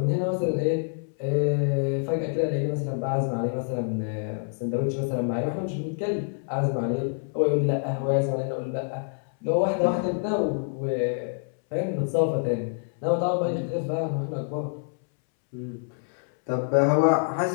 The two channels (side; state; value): right; silent; 60 dB below the other